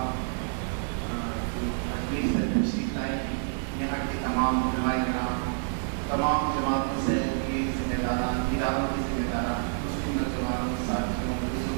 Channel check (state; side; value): silent; left; 59 dB below the other